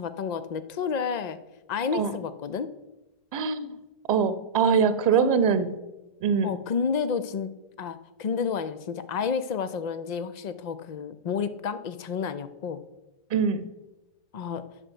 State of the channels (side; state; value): right; late; 1.9 ms